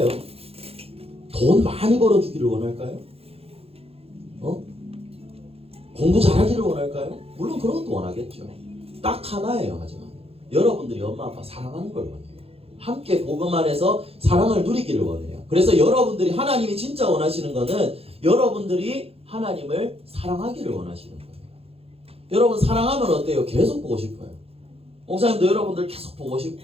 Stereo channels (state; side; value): late; left; 0.29 ms